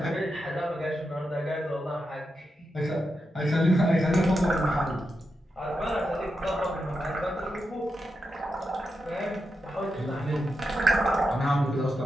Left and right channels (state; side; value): normal; both; correlation 0.87